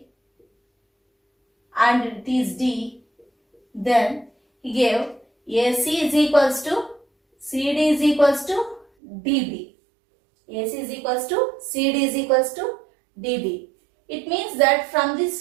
and it is D, then he gave AC is equals to CD is equals to DB. AC is equals to CD is equals to DB. It means that from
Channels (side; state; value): left; drops out; at 8.8 s